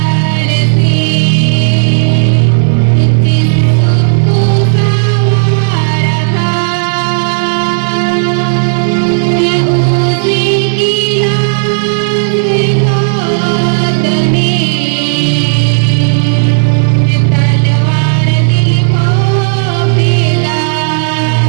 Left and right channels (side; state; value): left; silent; digital silence